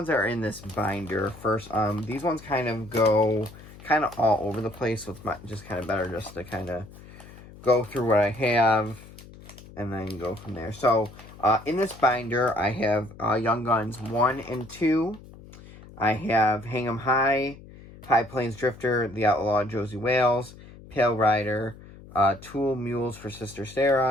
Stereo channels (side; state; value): left; noise; hum, 19 dB below the sound